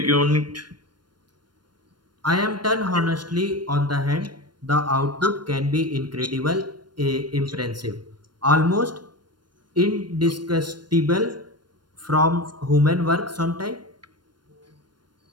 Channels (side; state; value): left; late; 0.71 ms